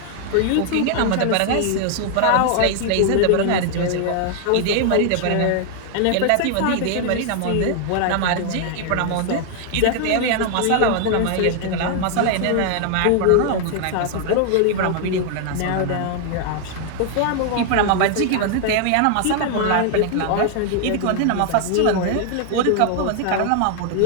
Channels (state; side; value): different; both; correlation 0.00